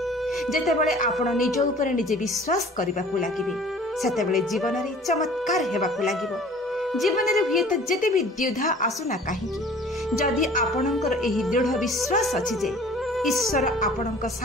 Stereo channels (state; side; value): normal; both; correlation 0.48